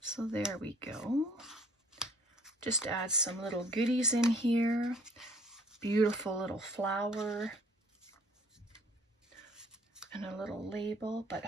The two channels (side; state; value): both; normal; correlation 0.56